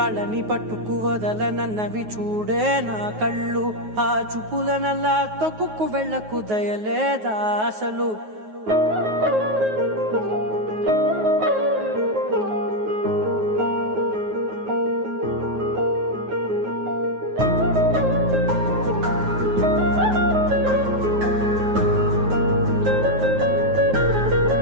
పట్టుకు వదలనన్నవి చూడే నా కళ్ళు ఆ చూపులనల్లా తొక్కుకు వెళ్ళకు దయలేదా అసలు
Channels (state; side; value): late; left; 9.4 ms